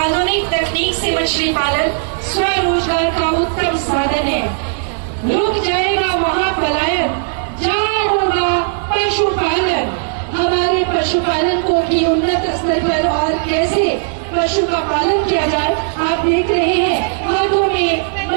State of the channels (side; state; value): left; silent; digital silence